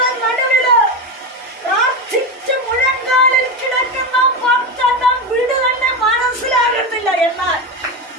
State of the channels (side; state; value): both; normal; correlation 0.16